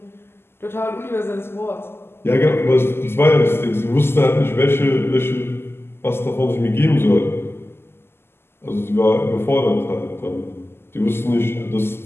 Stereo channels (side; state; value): right; late; 0.12 ms